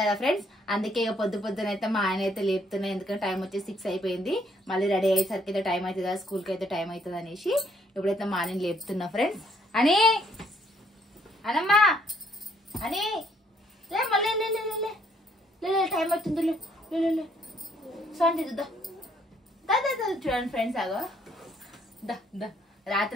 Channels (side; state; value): both; normal; correlation 0.67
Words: ఫ్రెండ్స్. అందుకే ఇక పొద్దున అయితే మా ఆయన అయితే లేపుతున్నాయి. ఎందుకంటే టైం వచ్చి 6 అయిపోయింది. మళ్ళీ రెడీ అయ్యేసరికి అయితే టైం అవుతుంది కదా, స్కూల్కి అయితే టైం అవుతుంది అనేసి ఇప్పుడైతే మా ఆయన లేపుతున్నా ఫ్రెండ్స్. అని అనమ్మా అని మళ్ళీ టైం అవుతుంది. సౌండ్ చూడండి ఫ్రెండ్స్. ఆగో